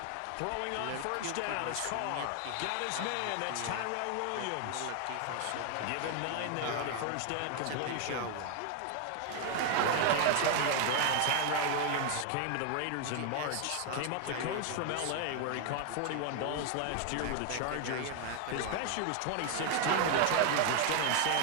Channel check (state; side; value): different; both; correlation 0.00